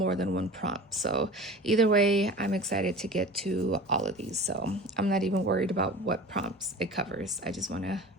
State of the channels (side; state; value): both; normal; correlation 0.38